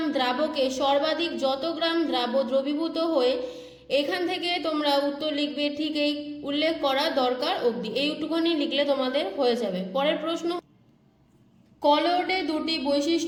দ্রাবকে সর্বাধিক যত গ্রাম দ্রবীভূত হয়ে, এখান থেকে তোমরা উত্তর লিখবে ঠিক এই উল্লেখ করা দরকার অবধি, এইটুকুনি লিখলে তোমাদের হয়ে যাবে। পরের প্রশ্ন, কলোয়েডে দুটি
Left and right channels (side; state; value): both; identical; correlation 1.00